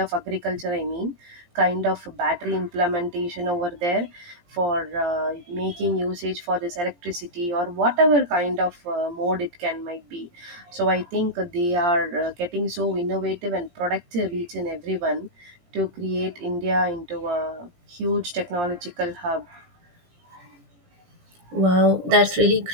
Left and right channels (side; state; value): left; late; 17 ms